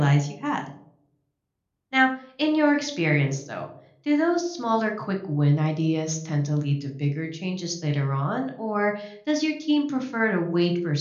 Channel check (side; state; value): both; identical; correlation 1.00